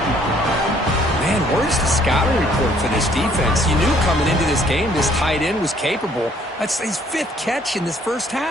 Man, where's the scouting report for this defense? You knew coming into this game this tight end was capable. That's his fifth catch in this first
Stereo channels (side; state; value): both; normal; correlation 0.62